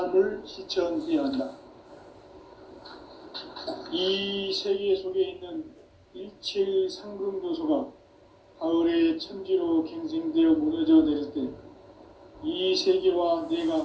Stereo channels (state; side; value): identical; both; correlation 1.00